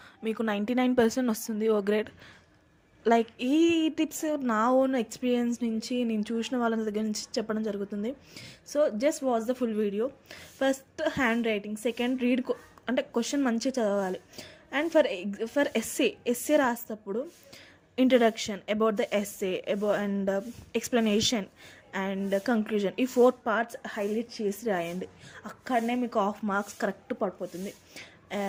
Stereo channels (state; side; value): identical; both; correlation 1.00